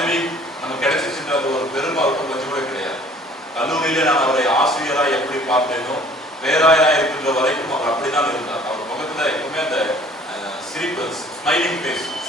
நமக்கு கிடைச்சிச்சுன்ற அந்த ஒரு பெருமை அவருக்கு கொஞ்சம் கூட கிடையாது. கல்லூரியில நான் அவரை ஆசிரியராக எப்படி பார்த்தேனோ பேராயராக இருக்கின்ற வரைக்கும் அவர் அப்படிதான் இருந்தார். அவர் முகத்துல எப்பவுமே அந்த சிரிப்பு, ஸ்மைலிங் ஃபேஸ்,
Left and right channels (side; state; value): both; normal; correlation 0.53